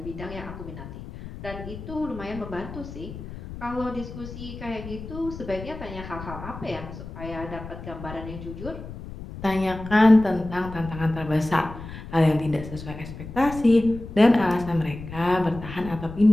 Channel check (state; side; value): noise; left; rumble, 11 dB below the sound